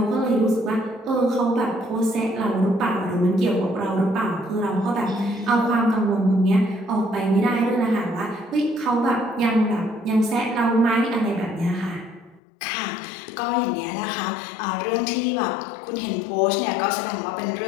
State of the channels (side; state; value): right; drops out; at 12.4 s